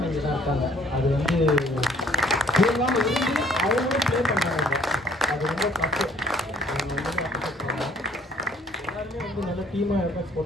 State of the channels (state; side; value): normal; both; correlation 0.61